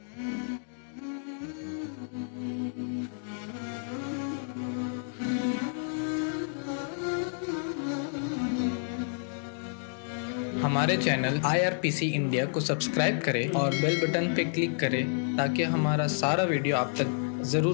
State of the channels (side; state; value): right; silent; digital silence